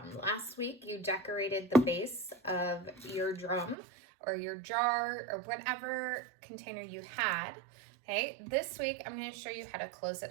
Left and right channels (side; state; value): left; drops out; at 3.8 s